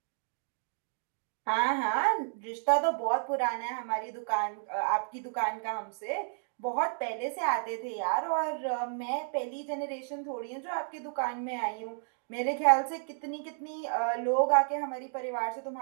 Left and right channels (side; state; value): left; silent; digital silence